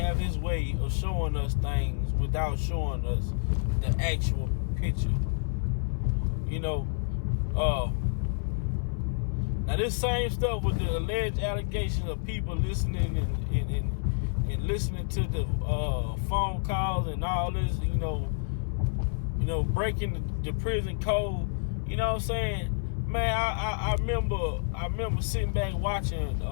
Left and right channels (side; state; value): right; silent; 56 dB below the other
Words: his way of showing us things without showing us the actual picture. Now this same stuff with the alleged allegations of people listening and listening to the phone calls and all this, breaking the prison code. You know what I'm saying? Man, I remember sitting back watching